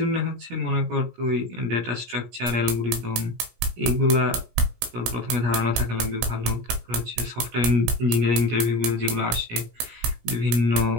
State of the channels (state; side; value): late; left; 17 ms